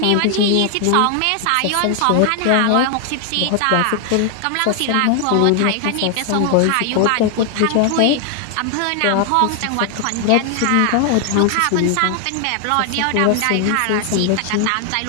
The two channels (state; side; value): different; both; correlation 0.00